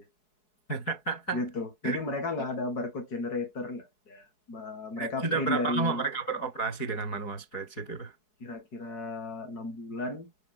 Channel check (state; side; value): late; right; 4.7 ms